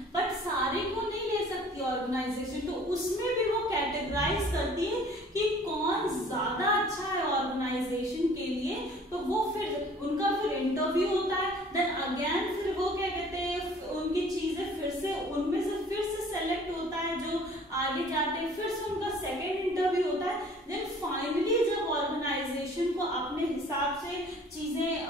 बट सारे को नहीं ले सकती ऑर्गेनाइजेशन, तो उसमें भी वो कैटेगराइज करती है कि कौन ज्यादा अच्छा है ऑर्गेनाइजेशन के लिए, तो वो फिर उनका फिर इंटरव्यू होता है, देन अगेन फिर वो क्या कहते हैं उनकी चीजें फिर से उनमें से फिर से सेलेक्ट होता है जो आगे जाते हैं, फिर से उनका सेकेंड इंटरव्यू होता है, देन फाइनली जब ऑर्गेनाइजेशन को अपने हिसाब से चीजें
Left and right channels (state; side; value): normal; both; correlation 0.52